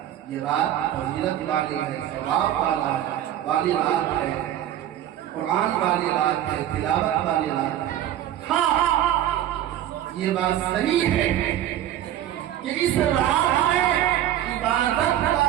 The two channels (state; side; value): quieter; left; 11.8 dB